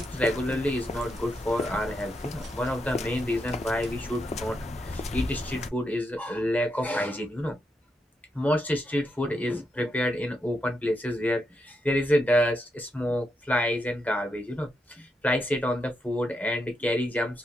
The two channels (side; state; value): both; normal; correlation 0.82